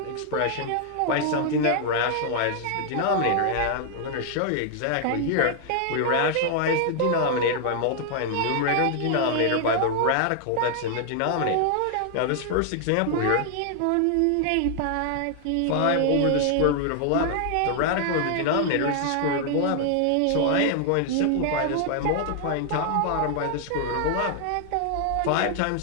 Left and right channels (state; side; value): different; both; correlation 0.00